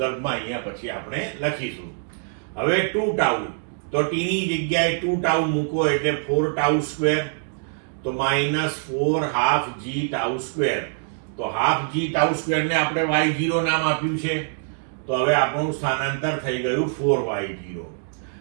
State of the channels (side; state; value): left; silent; digital silence